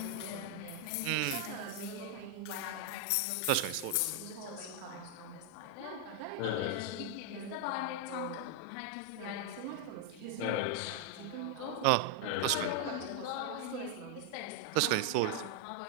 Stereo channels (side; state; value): both; different; correlation 0.00